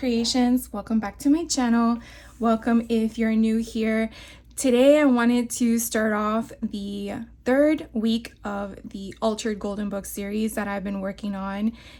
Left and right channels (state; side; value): identical; both; correlation 1.00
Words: Welcome back to my channel. Welcome if you're new here. Today I wanted to start off the third week of the Altered Golden Book series that I've been working on